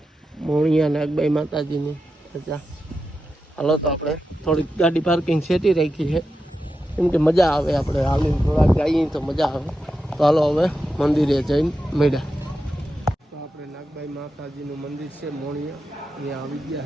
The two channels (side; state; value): both; normal; correlation 0.89